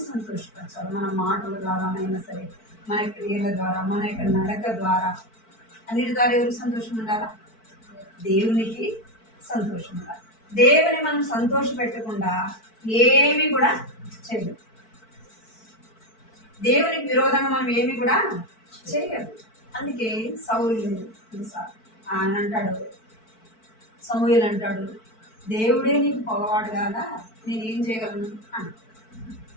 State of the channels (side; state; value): right; late; 4.5 ms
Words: సంతోషపరచాలి. మన మాటల ద్వారానైనా సరే, మన క్రియల ద్వారా, మన యొక్క నడక ద్వారా, అన్నిటి ద్వారా ఎవరికి సంతోషం ఉండాలా? దేవునికి సంతోషం ఉండాలి. దేవుని మనం సంతోష పెట్టకుండా ఏమి కూడా చేయలేము. దేవునికి విరోధంగా మనం ఏమి కూడా చేయలేదు. అందుకే సౌలు ఆయన అంటాడు, సమూయేలు అంటాడు, దేవుడే నీకు పొగవాడు కాదా, నేనేం చేయగలను అని.